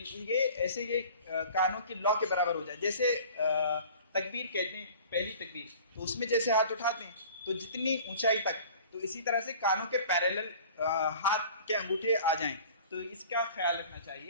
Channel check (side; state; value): both; inverted; correlation -0.45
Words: ایسے یہ کانوں کی لو کے برابر ہو جائے۔ جیسے تکبیر کہتے ہیں، پہلی تکبیر، تو اس میں جیسے ہاتھ اٹھاتے ہیں تو جتنی اونچائی تک، تو اسی طرح سے کانوں کے پیریلل ہاتھ کے انگوٹھے آ جائیں، تو اس کا خیال رکھنا